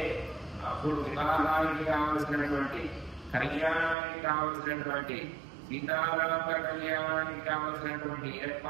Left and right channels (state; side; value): drops out; left; at 4.0 s